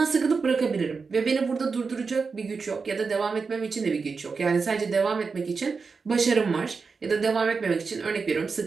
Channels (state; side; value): quieter; left; 4.9 dB